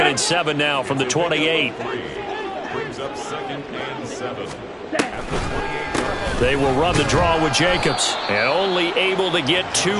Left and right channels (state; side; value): identical; both; correlation 1.00